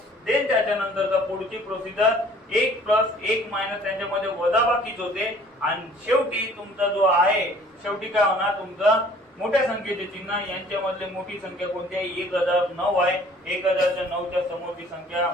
देन त्याच्यानंतरचा पुढची प्रोसिजर 1 प्लस 1 मायनस त्यांच्यामध्ये वजाबाकीच होते आणि शेवटी तुमचा जो आहे शेवटी काय होणार? तुमचा मोठ्या संख्येचे चिन्ह यांच्यामधले मोठी संख्या कोणती आहे? 1009 आहे. 1009च्या समोरची संख्या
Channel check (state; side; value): normal; both; correlation 0.54